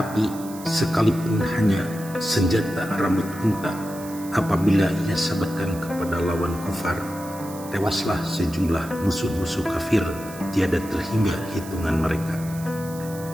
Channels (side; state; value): right; noise; hiss, 16 dB below the sound